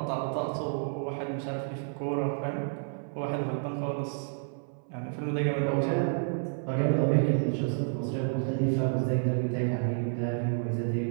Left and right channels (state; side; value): silent; left; 57 dB below the other